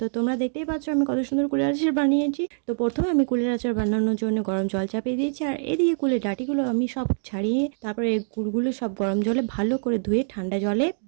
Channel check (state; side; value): silent; left; digital silence